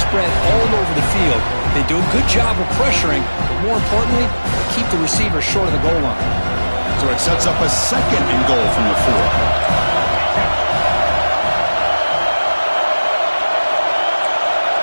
spread all over the field. They do a good job of pressuring, but more importantly, keep the receiver short of the goal line. So it sets up a 2nd and goal from the 4.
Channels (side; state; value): both; inverted; correlation -1.00